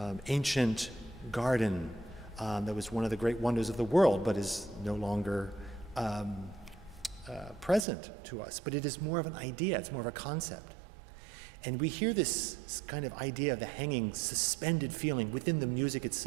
ancient garden that was one of the great wonders of the world, but is no longer present to us. But it is more of an idea, it's more of a concept. And we hear this kind of idea of the hanging, suspended feeling within the music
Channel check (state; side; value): drops out; left; at 7.9 s